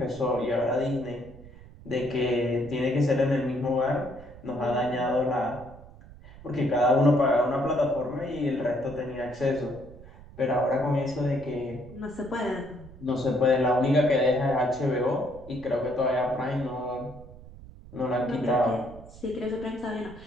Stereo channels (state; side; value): noise; right; rumble, 18 dB below the sound